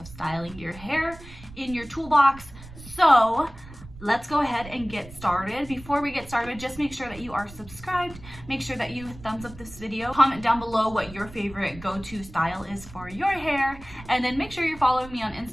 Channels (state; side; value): noise; right; rumble, 17 dB below the sound